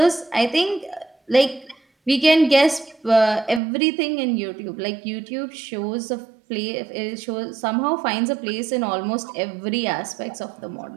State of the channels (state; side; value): drops out; left; at 3.6 s